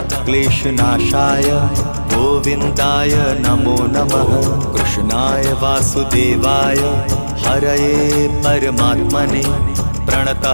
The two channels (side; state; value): both; inverted; correlation -1.00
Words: क्लेशनाशाय गोविन्दाय नमो नमः। कृष्णाय वासुदेवाय हरये परमात्मने